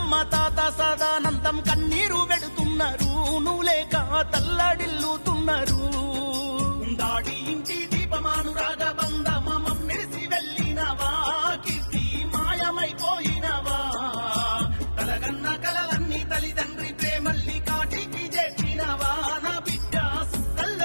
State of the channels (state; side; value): inverted; both; correlation -1.00